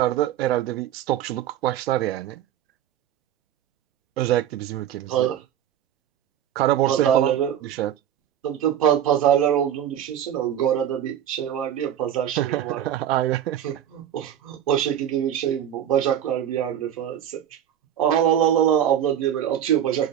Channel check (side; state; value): left; quieter; 10.4 dB